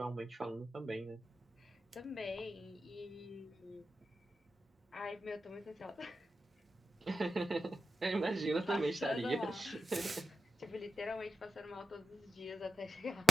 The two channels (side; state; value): both; normal; correlation 0.90